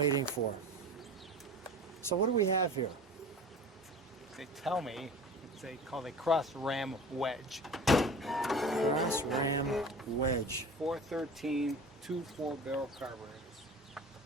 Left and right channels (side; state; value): both; normal; correlation 0.38